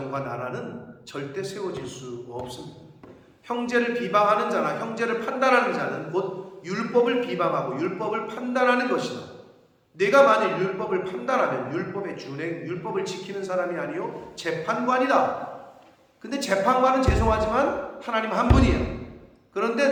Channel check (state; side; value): identical; both; correlation 1.00